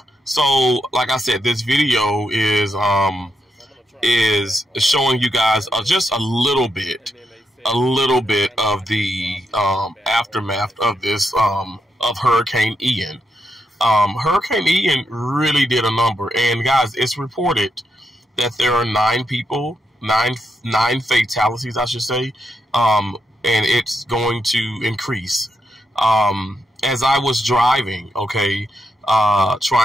So, like I said, this video is showing you guys just a little bit of the aftermath of this of Hurricane Ian. Hurricane Ian really did a number, and guys, it's reported that there are 9 fatalities, I should say, and it's going to increase. As I was driving, okay,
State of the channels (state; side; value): normal; both; correlation 0.83